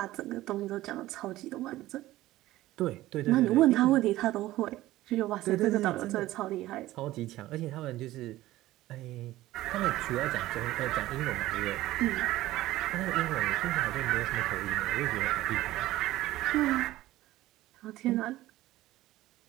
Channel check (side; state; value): left; quieter; 16.2 dB